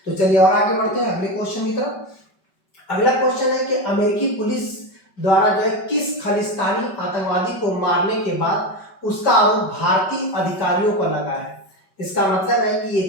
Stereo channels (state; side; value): late; right; 5.2 ms